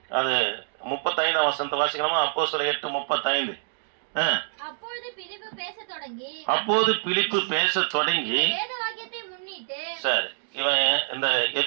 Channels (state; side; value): silent; left; digital silence